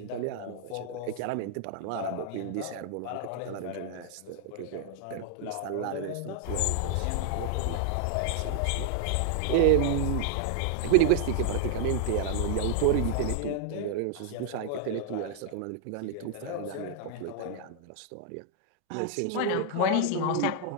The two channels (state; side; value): different; both; correlation 0.00